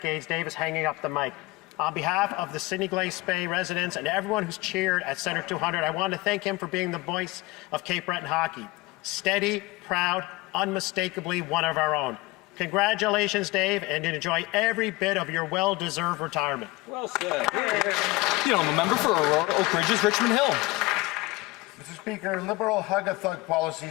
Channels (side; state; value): right; quieter; 21.7 dB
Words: Dave is hanging up the mic. On behalf of the Sydney Glace Bay residents and everyone who's cheered at Centre 200, I want to thank him for being the voice of Cape Breton hockey. Steady, proud, unmistakably one of our own. Congratulations, Dave, and enjoy every bit of your well-deserved retirement. Well said. The member for Aurora Oak Ridges, Richmond Hill. Mr. Speaker, Liberal hug-a-thug